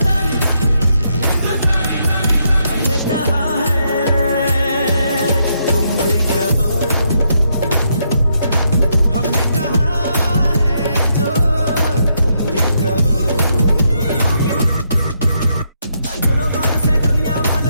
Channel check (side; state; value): both; inverted; correlation -0.77